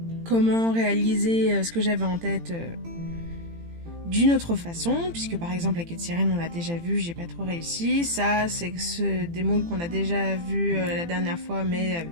comment réaliser ce que j'avais en tête d'une autre façon, puisque par exemple la queue de sirène on l'a déjà vu, j'ai pas trop réussi. Ça c'est des moules qu'on a déjà vu la dernière fois mais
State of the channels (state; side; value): late; left; 18 ms